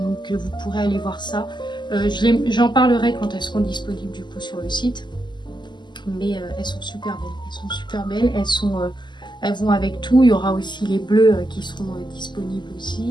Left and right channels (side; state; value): right; late; 0.21 ms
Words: donc vous pourrez aller voir ça. J'en parlerai quand elles seront disponibles du coup sur le site. Mais elles sont super belles, elles vont avec tout. Il y aura aussi les bleus qui seront disponibles